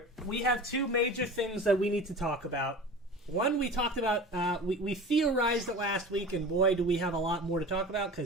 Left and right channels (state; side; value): normal; both; correlation 0.35